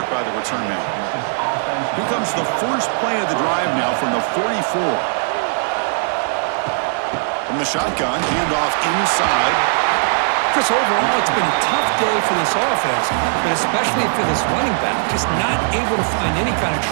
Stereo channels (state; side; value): silent; left; 66 dB below the other